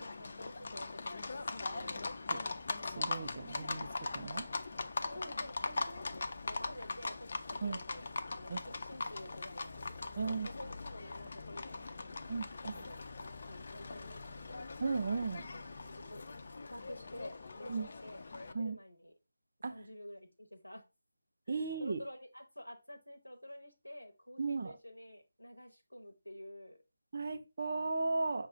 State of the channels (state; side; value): inverted; both; correlation -0.89